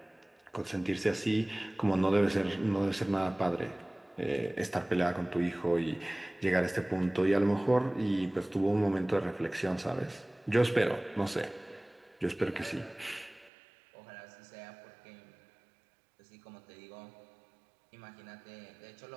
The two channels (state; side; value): drops out; left; at 13.5 s